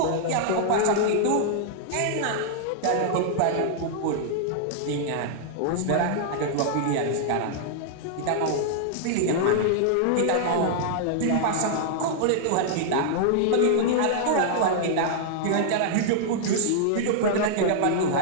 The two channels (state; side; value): different; both; correlation -0.01